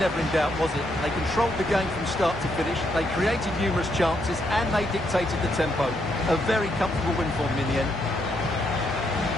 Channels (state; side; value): normal; both; correlation 0.76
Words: in doubt, was it? They controlled the game from start to finish, they created numerous chances, and they dictated the tempo. A very comfortable win for them in the end.